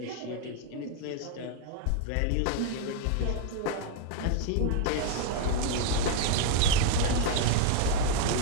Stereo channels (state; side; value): different; both; correlation 0.00